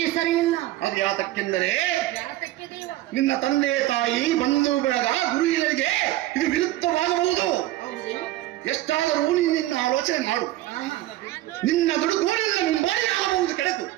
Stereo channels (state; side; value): quieter; left; 15.7 dB